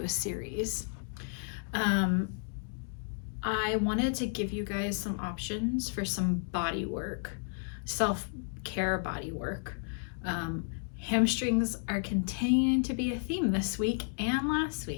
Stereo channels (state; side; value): silent; right; digital silence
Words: a series. I wanted to give you guys some options for some body work, self-care body work. Hamstrings are continuing to be a theme this week and last